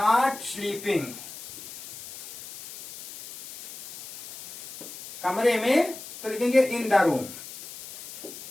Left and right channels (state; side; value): noise; left; hiss, 12 dB below the sound